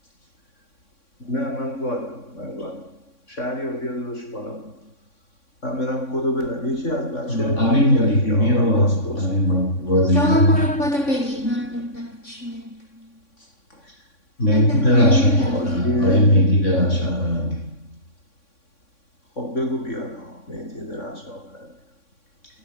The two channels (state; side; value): late; right; 3.6 ms